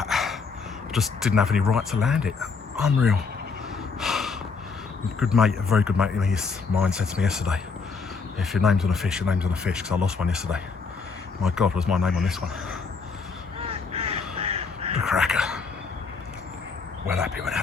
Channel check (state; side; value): quieter; right; 4.8 dB